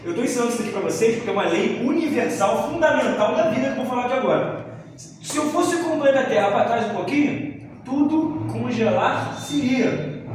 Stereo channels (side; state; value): both; identical; correlation 1.00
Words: Eu estou ensinando isso aqui para vocês porque é uma lei universal, fundamental da vida que eu vou falar aqui agora. Se eu fosse com o planeta Terra para trás um pouquinho, tudo congelar-se-ia.